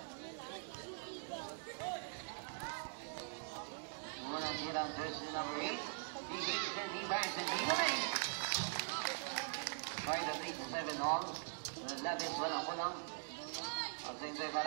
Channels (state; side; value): silent; left; digital silence